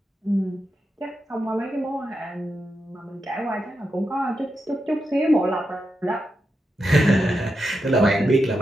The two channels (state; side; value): normal; both; correlation 0.87